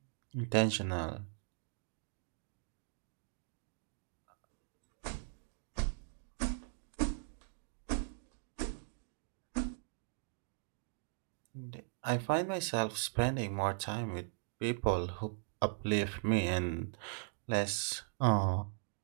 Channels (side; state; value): left; silent; digital silence